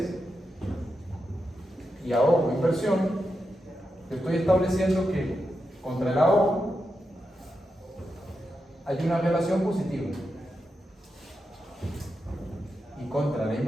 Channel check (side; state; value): both; normal; correlation 0.87